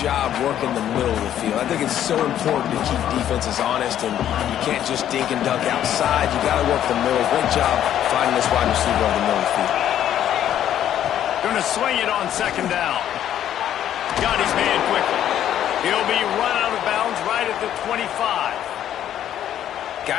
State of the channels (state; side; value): quieter; right; 10.9 dB